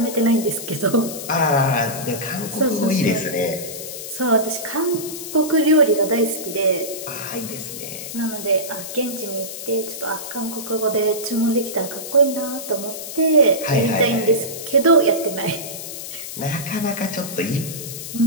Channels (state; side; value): noise; left; hiss, 9 dB below the sound